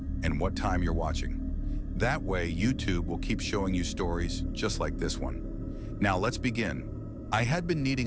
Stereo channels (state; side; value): identical; both; correlation 1.00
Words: and what time you're watching. That way, YouTube will keep showing you stories just like this one. Now let's begin. I had been needing